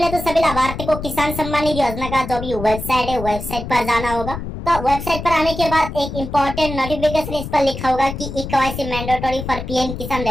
तो सभी लाभार्थी को किसान सम्मान निधि योजना का जो भी वेबसाइट है, वेबसाइट पर जाना होगा। तो वेबसाइट पर आने के बाद एक इंपॉर्टेंट नोटिफिकेशन इस पर लिखा होगा कि ई-केवाईसी मैंडेटरी फॉर पीएम किसान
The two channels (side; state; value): left; noise; rumble, 8 dB below the sound